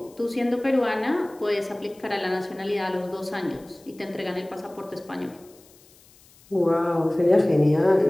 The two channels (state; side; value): noise; left; hiss, 27 dB below the sound